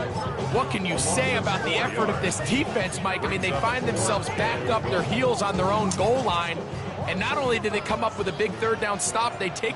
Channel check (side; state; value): both; identical; correlation 1.00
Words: What can you say about the effort of this defense, Mike? I mean, they find themselves backed up their heels on their own goal line. And not only did they come up with a big third down stop, they take